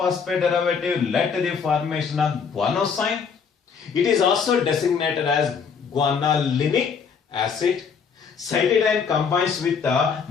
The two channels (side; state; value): right; quieter; 6.2 dB